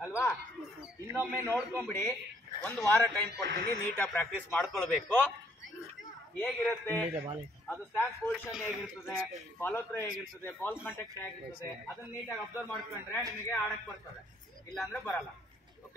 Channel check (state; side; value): normal; both; correlation 0.66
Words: ಅಲ್ವಾ? ಇನ್ನೊಮ್ಮೆ ನೋಡ್ಕೊಂಬಿಡಿ, ಒಂದು ವಾರ ಟೈಮ್ ಕೊಡ್ತೀನಿ, ನೀಟಾಗಿ ಪ್ರಾಕ್ಟೀಸ್ ಮಾಡ್ಕೊಳ್ಬೇಕು. ಹೇಗಿರುತ್ತೆ ಅದು, ಸ್ಟ್ಯಾನ್ಸ್ ಪೊಸಿಷನ್ ಹೇಗಿರ್ತದೆ, ಫಾಲೋ ಥ್ರೋ ಹೇಗಿರ್ತದೆ, ಬಾಲ್ ಕಾಂಟ್ಯಾಕ್ಟ್ ಹೇಗಿರ್ತದೆ, ಅದನ್ನ ನೀಟಾಗಿ ಅಬ್ಸರ್ವ್ ಮಾಡ್ಕೊಂಡ್ರೆ ನಿಮಗೆ ಆಡಕ್ ಬರ್ತದೆ, ಇಲ್ಲ ಅಂದ್ರೆ ಬರಲ್ಲ.